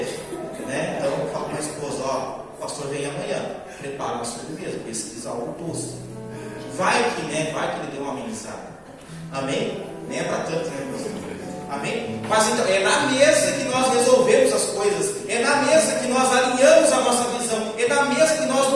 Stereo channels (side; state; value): both; identical; correlation 1.00